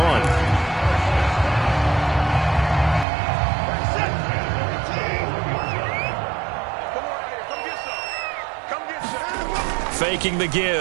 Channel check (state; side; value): drops out; left; at 3.1 s